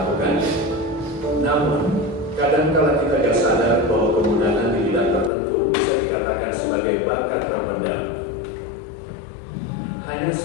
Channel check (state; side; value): drops out; right; at 5.3 s